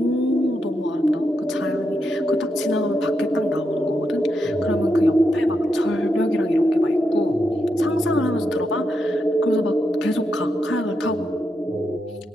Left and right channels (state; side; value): normal; both; correlation 0.84